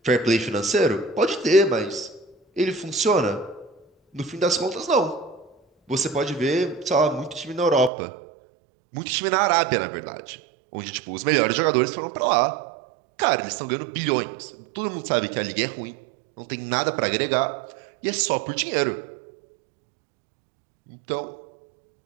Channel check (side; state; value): left; drops out; at 7.9 s